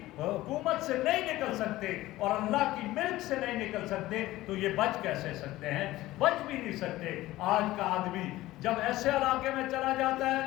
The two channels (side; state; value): right; quieter; 16.9 dB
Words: حکومت سے نہیں نکل سکتے اور اللہ کی ملک سے نہیں نکل سکتے تو یہ بچ کیسے سکتے ہیں؟ بچ بھی نہیں سکتے۔ آج کا آدمی جب ایسے علاقے میں چلا جاتا